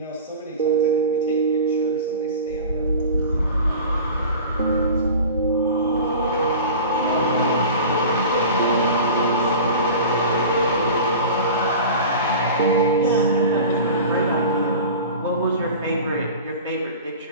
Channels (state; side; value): inverted; both; correlation -0.36